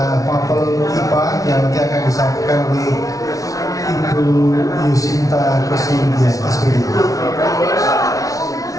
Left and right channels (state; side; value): late; right; 0.17 ms